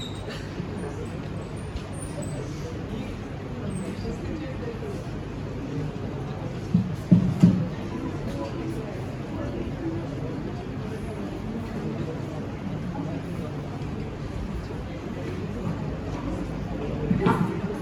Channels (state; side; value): identical; both; correlation 1.00